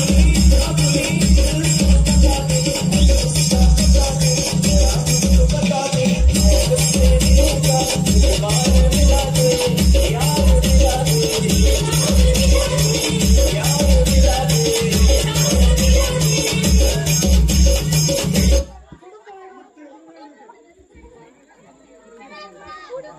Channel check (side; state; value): both; identical; correlation 1.00